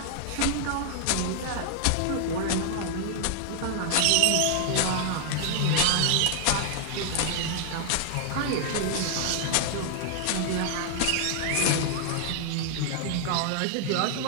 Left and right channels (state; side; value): different; both; correlation 0.00